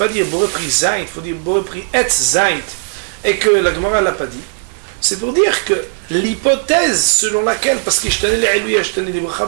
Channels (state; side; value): silent; left; 67 dB below the other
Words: dire Boré Pri Zaït, il faut dire Boré Pri Etz Zaït, et que la Gemara ne l'a pas dit, c'est pour dire que l'hypothèse selon laquelle, parce que je tenais les lui, je tenais les brachas,